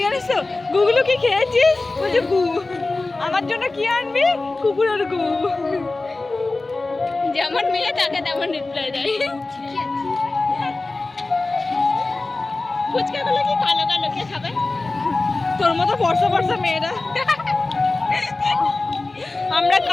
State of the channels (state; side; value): quieter; right; 3.3 dB